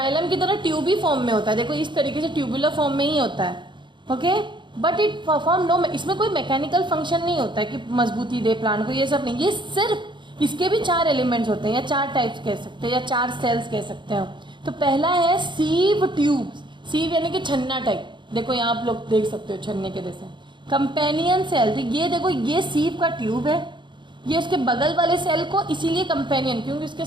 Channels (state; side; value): late; left; 0.23 ms